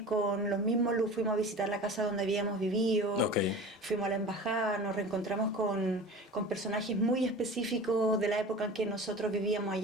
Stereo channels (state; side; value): normal; both; correlation 0.37